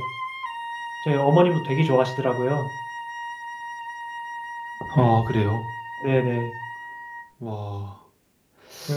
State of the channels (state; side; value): identical; both; correlation 1.00